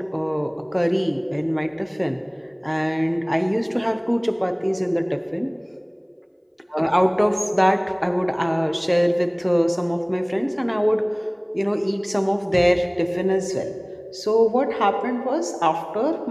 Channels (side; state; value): both; identical; correlation 1.00